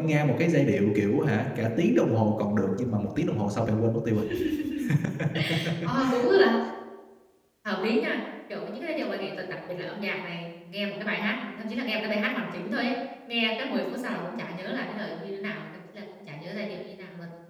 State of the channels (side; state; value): both; identical; correlation 1.00